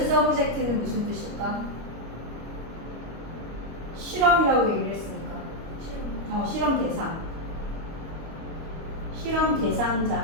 subject는 무슨 뜻일까? 실험이라고 얘기를 했으니까. 실험. 실험 대상. 실험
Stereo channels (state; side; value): late; left; 25 ms